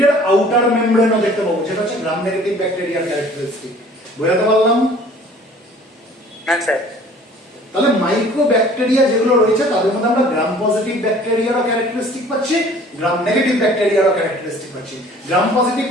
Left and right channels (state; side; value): normal; both; correlation 0.51